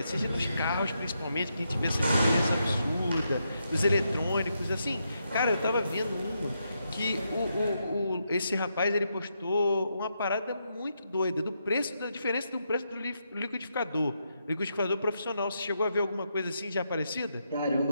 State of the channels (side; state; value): both; inverted; correlation -0.81